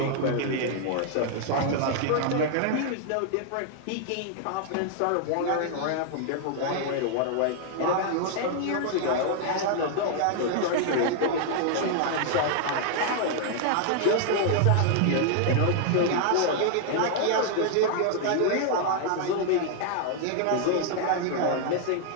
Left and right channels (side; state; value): both; different; correlation 0.00